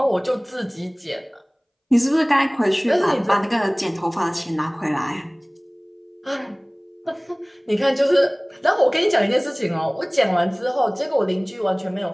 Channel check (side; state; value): both; identical; correlation 1.00